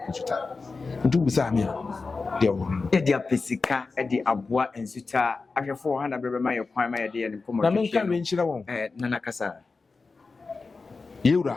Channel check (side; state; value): right; quieter; 4.1 dB